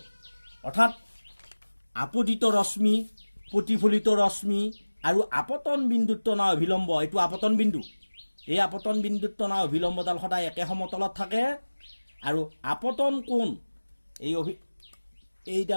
অৰ্থাৎ আপতিত ৰশ্মি প্ৰতিফলিত ৰশ্মি আৰু আপতন বিন্দুত টনা অভিলম্ব এইটো আপতন বিন্দু এই আপতন বিন্দুত টনা অভিলম্বডাল সদায় একে সমতলত থাকে আৰু আপতন কোণ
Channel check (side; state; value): both; inverted; correlation -1.00